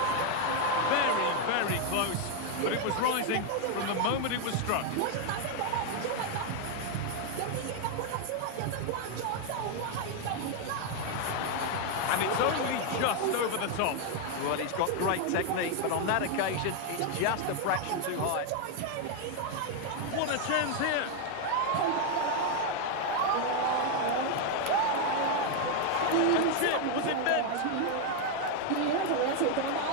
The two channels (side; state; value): both; different; correlation 0.01